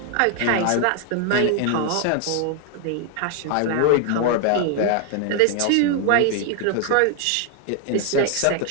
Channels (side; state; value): both; different; correlation 0.00